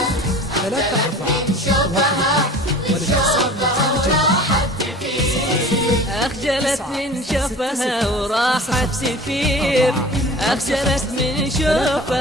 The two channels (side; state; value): both; normal; correlation 0.41